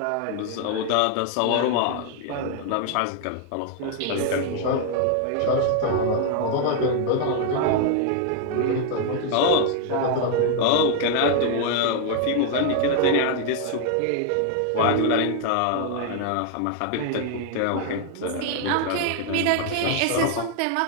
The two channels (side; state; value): both; different; correlation 0.00